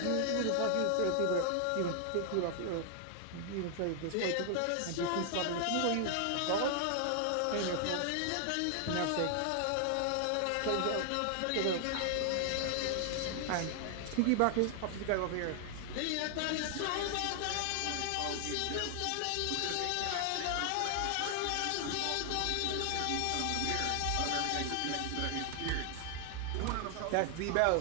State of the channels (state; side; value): different; both; correlation 0.00